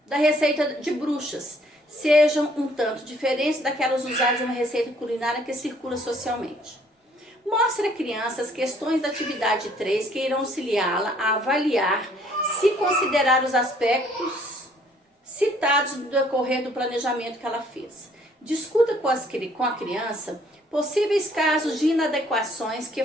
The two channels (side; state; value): both; normal; correlation 0.62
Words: da receita de bruxas sejam um tanto diferentes daquelas usadas em uma receita culinária que circula socialmente. Mostre à criança as questões da atividade 3 que irão auxiliá-la a avaliar se considerar os aspectos citados no decorrer do planejamento que ela fez. Discuta com a criança possíveis casos de inadequações que